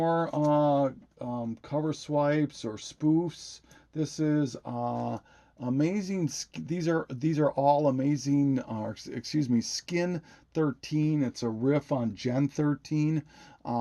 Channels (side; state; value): both; identical; correlation 1.00